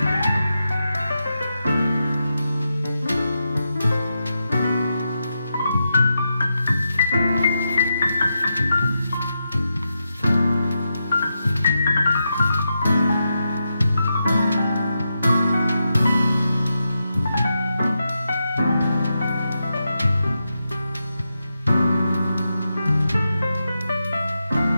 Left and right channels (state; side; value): inverted; both; correlation -0.87